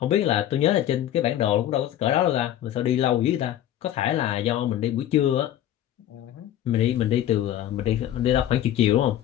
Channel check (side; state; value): right; quieter; 11.9 dB